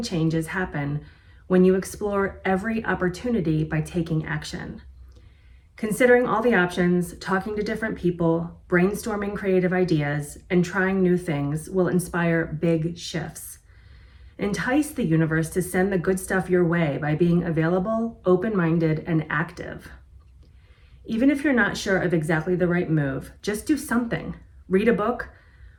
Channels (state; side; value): identical; both; correlation 1.00